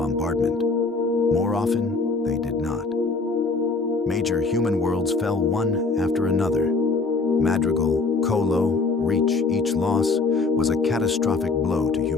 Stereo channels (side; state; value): right; quieter; 3.9 dB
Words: More often, they did not. Major human worlds fell one after another. Madrigal, Colo, Reach, each loss was a catastrophic blow to